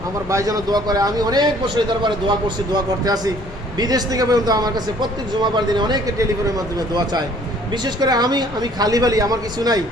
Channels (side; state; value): both; normal; correlation 0.57